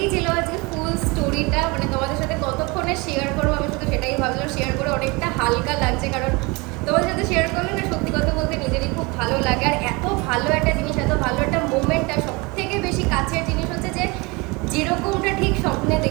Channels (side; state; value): left; quieter; 26.4 dB